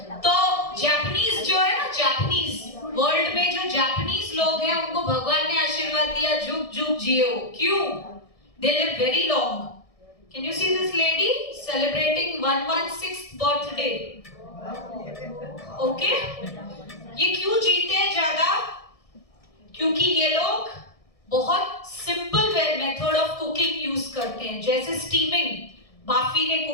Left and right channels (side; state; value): right; late; 1.6 ms